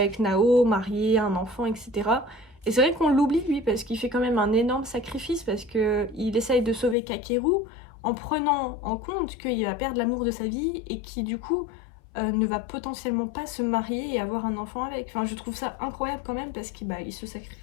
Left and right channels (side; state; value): right; drops out; at 7.0 s